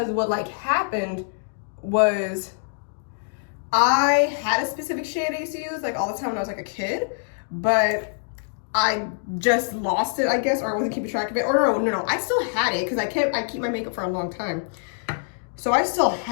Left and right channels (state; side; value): silent; right; 62 dB below the other